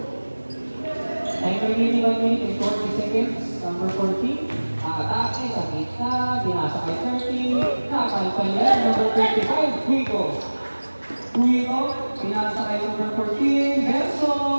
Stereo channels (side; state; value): both; inverted; correlation -1.00